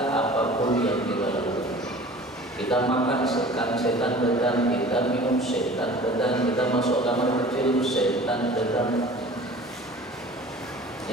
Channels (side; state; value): both; normal; correlation 0.43